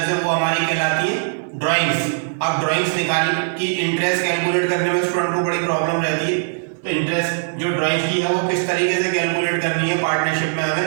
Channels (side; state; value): left; silent; digital silence